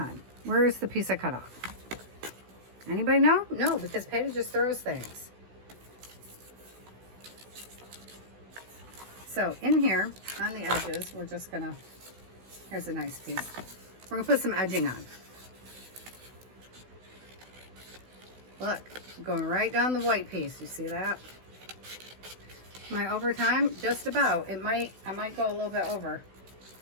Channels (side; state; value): left; late; 16 ms